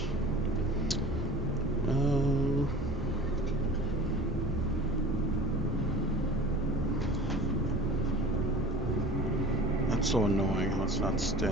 Um, that's so annoying how it's not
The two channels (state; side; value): normal; both; correlation 0.40